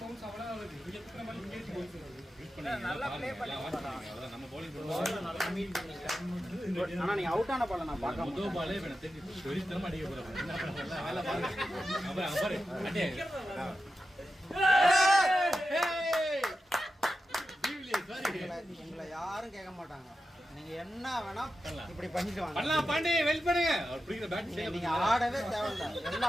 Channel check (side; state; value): both; normal; correlation 0.91